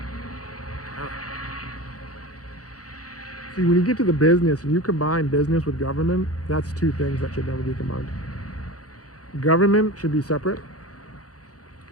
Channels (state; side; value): late; right; 0.67 ms